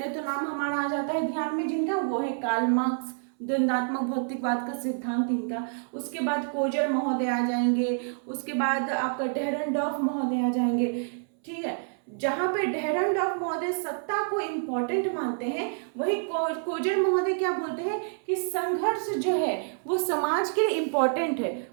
तो नाम हमारा आ जाता है ध्यान में जिनका, वो है कार्ल मार्क्स, द्वंद्वात्मक भौतिकवाद का सिद्धांत इनका। उसके बाद कोजर महोदय आ जाएंगे, उसके बाद आपका डेहरनडॉर्फ महोदय आ जाएंगे। ठीक है, जहां पे डेहरनडॉर्फ महोदय सत्ता को इम्पोर्टेंट मानते हैं, वही कोजर महोदय क्या बोलते हैं कि संघर्ष जो है वो समाज के लिए इम्पोर्टेंट है,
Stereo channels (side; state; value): left; silent; 59 dB below the other